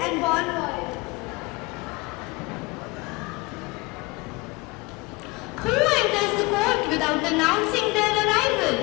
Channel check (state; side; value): quieter; right; 24.6 dB